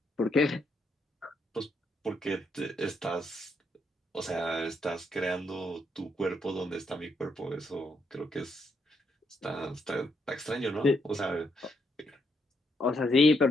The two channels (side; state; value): both; normal; correlation 0.77